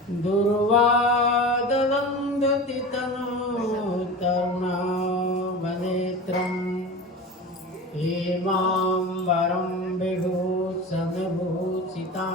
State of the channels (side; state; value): both; normal; correlation 0.31